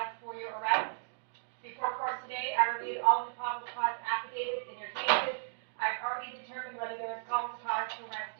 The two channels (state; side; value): silent; left; digital silence